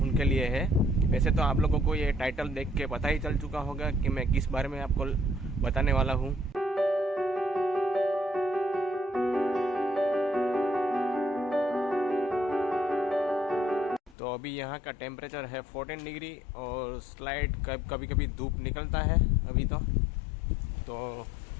उनके लिए है। वैसे तो आप लोगों को ये टाइटल देख के पता ही चल चुका होगा कि मैं किस बारे में आपको बताने वाला हूँ। तो अभी यहाँ का टेम्परेचर है 14 डिग्री और स्लाइड कभी कभी धूप निकलता है अभी तो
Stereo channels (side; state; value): right; drops out; at 14.2 s